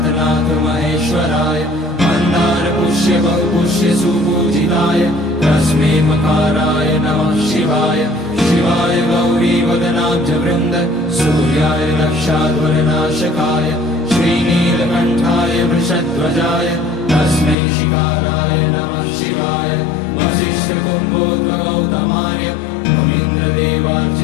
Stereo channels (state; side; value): drops out; right; at 17.6 s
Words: महेश्वराय मन्दार पुष्य बहुपुष्य सुपूजिताय तस्मै मकाराय नमः शिवाय शिवाय गौरी वदनाब्ज वृन्द सूर्याय दक्षाध्वरनाशकाय श्रीनीलकण्ठाय वृषध्वजाय तस्मै शिकाराय नमः शिवाय वसिष्ठकुम्भोद्भगौतमाय